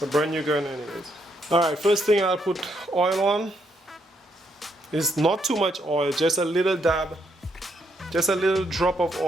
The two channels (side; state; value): both; normal; correlation 0.75